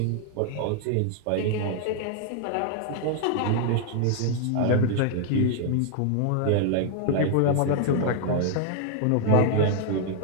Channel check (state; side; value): different; both; correlation 0.00